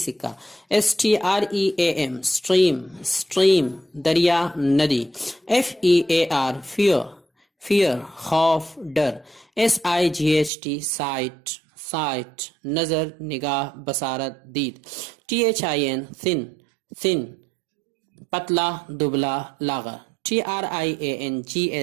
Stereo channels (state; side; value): drops out; left; at 10.5 s